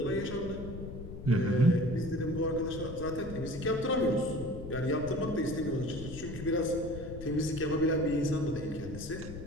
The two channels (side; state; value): left; noise; rumble, 10 dB below the sound